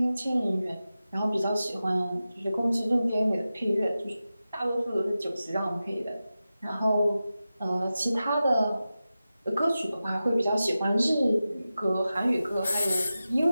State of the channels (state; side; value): inverted; both; correlation -0.94